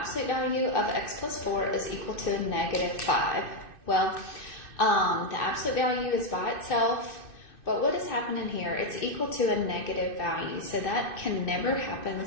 value of x plus 4 is equal to negative 5. Well, the absolute value is by itself, but what is happening here? It's equal to a negative value, so that can never happen,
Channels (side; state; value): right; late; 2.6 ms